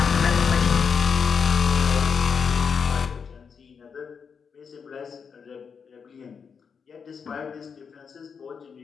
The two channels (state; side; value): quieter; right; 6.2 dB